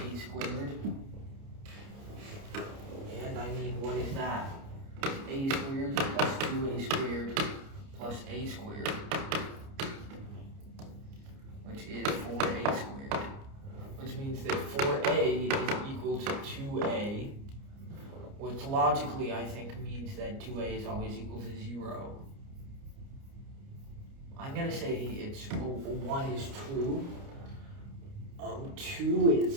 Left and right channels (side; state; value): left; late; 29 ms